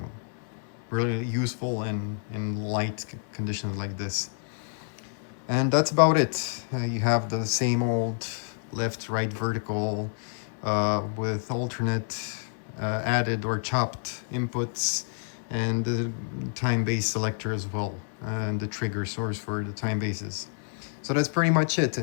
really useful in light conditions like this. And that's about it. You have the same old left, right, vertical with alternate added or chopped inputs, and the time base selector as well, and the trigger source for the time bases. So that's pretty much it.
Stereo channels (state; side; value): silent; right; 59 dB below the other